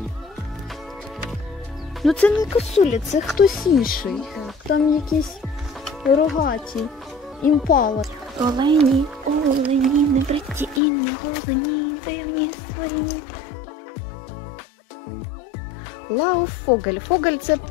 Ну це не косуля, це хтось інший. Там якісь рогаті. Імпала. Олені, не бриті і не голені, дивні створіння. Лауфогель. Фогель – це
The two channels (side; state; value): right; drops out; at 10.8 s